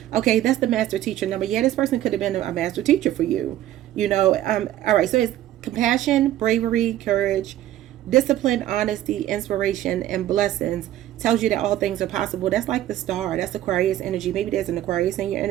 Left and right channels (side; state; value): left; quieter; 13.1 dB